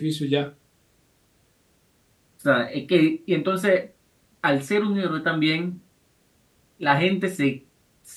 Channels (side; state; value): both; identical; correlation 1.00